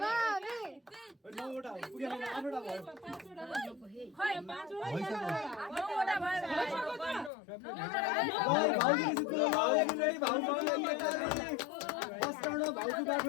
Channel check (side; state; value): right; drops out; at 7.3 s